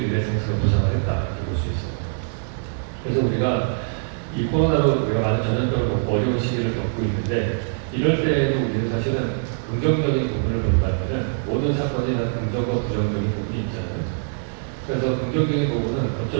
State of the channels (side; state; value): left; silent; digital silence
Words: 리네상스가 부상을 했다 이렇게 볼 수 있습니다. 그래서 우리가 이 코로나로 우리가 많은 전염병을 어려운 시기를 겪고 있는데 이럴 때에도 우리는 사실은 긍정적인 부분을 본다면 모든 사건이 다 긍정과 부정적인 부분이 있잖아요. 그래서 긍정적인 부분은